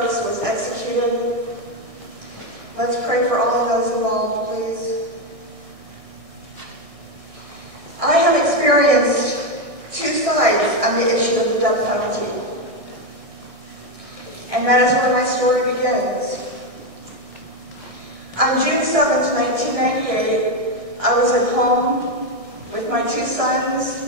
was executed. Let's pray for all of those involved, please. I have experienced two sides on the issue of the death penalty. And that is where my story begins. On June 7th, 1998, I was at home with my two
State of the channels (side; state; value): left; late; 1.6 ms